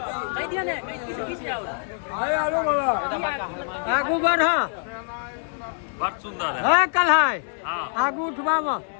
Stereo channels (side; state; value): right; silent; 62 dB below the other